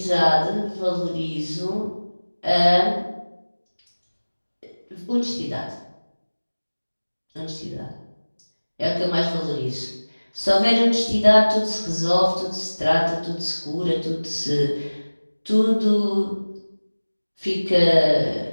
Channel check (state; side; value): inverted; both; correlation -1.00